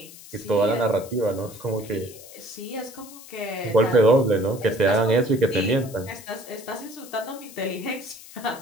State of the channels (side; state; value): left; noise; hiss, 18 dB below the sound